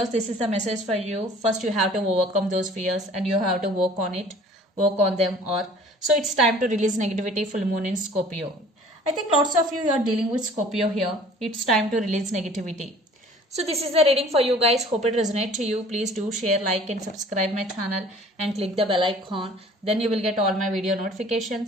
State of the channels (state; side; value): normal; both; correlation 0.50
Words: this is the message for you. First, you have to overcome those fears and you have to work on it, work on them. Or so it's time to release negativity, full moon in Scorpio. I think lots of you are dealing with Scorpio here. It's time to release negativity. So this is the reading for you guys. Hope it resonates to you. Please do share, like and subscribe my channel and click the bell icon. Then you will get all my video